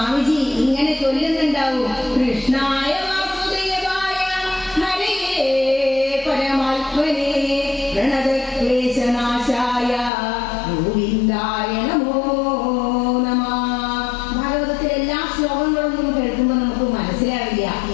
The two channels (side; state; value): right; drops out; at 10.1 s